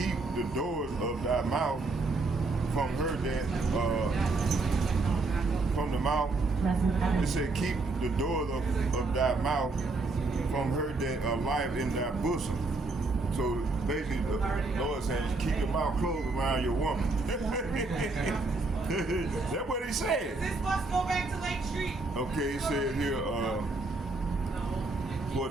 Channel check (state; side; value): quieter; left; 3.5 dB